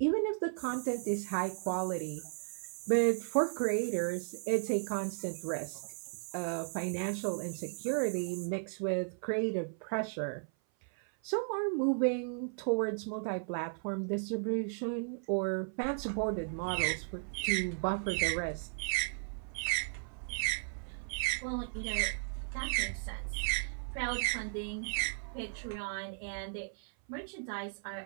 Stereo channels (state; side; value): silent; left; 54 dB below the other